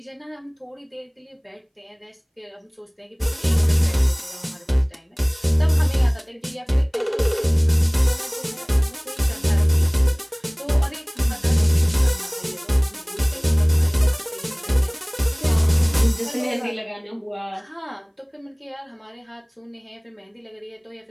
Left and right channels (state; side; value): identical; both; correlation 1.00